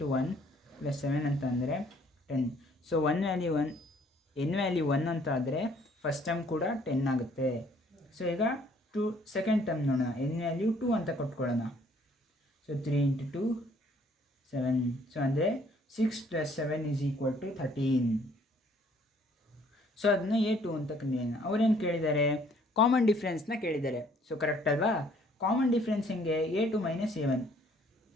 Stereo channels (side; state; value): both; normal; correlation 0.61